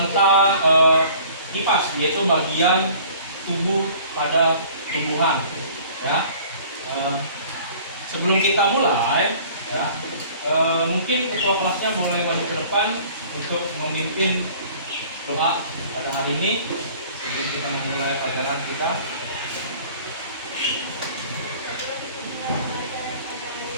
kipas, yaitu bagian tubuh pada tumbuhan. Ya, sebelum kita mulai, ya, mungkin ketua kelasnya boleh maju ke depan untuk memimpin doa pada hari ini sebelum kita memulai pelajaran kita.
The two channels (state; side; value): inverted; both; correlation -0.50